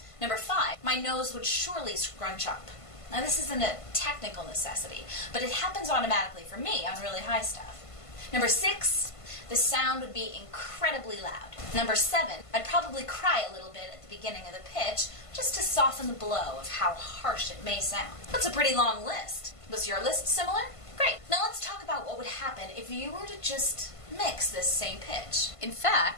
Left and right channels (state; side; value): late; right; 1.5 ms